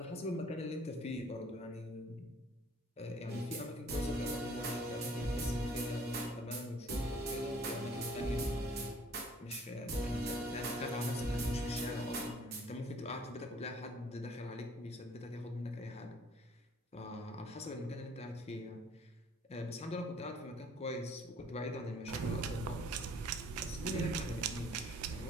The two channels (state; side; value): normal; both; correlation 0.57